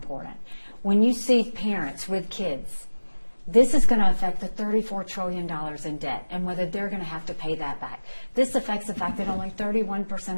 When you see parents with kids, this is going to affect the $34 trillion in debt and whether they're going to have to pay that back. This affects the fact that only 31%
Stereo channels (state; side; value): inverted; both; correlation -1.00